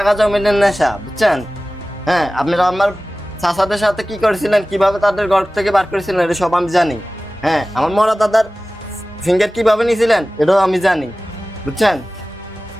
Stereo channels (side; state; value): both; normal; correlation 0.97